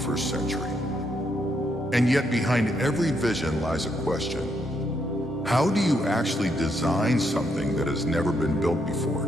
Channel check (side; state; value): both; normal; correlation 0.77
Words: century. And yet behind every vision lies a question. How do you actually design something that has never been built before?